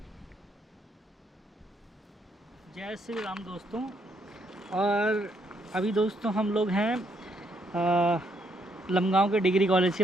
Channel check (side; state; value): both; normal; correlation 0.73